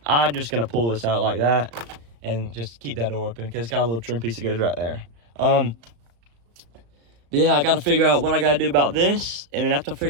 I'm just gonna pull this out like that and just keep that door open because it's got a little trim piece that goes right there. Yeah, I gotta figure out what I gotta do about this, and then after I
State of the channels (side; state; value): left; late; 35 ms